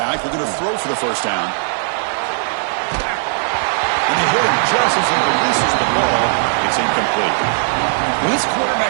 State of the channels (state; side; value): silent; left; 63 dB below the other